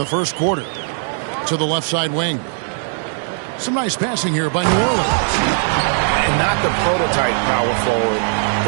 first quarter. To the left side wing. Some nice passing here by New Orleans. And not the prototype power forward,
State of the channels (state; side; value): silent; left; digital silence